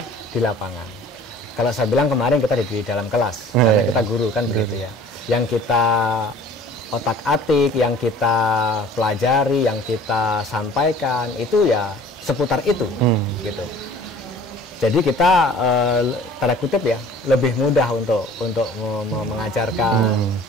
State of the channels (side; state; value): both; normal; correlation 0.48